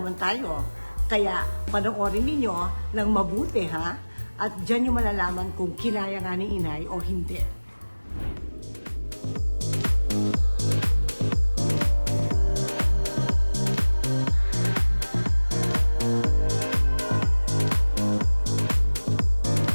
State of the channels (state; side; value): inverted; both; correlation -1.00